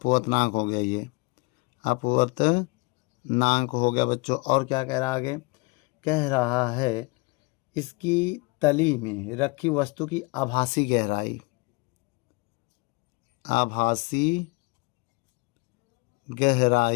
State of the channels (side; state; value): right; quieter; 27.5 dB